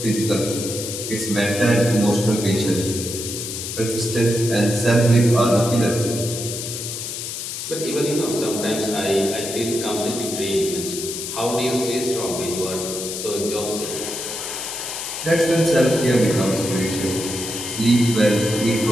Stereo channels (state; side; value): noise; left; hiss, 6 dB below the sound